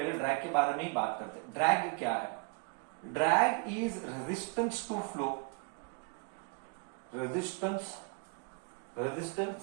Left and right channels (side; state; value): left; quieter; 33.7 dB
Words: ड्रैग के बारे में ही बात करते हैं। ड्रैग क्या है? Drag is resistance to flow. Resistance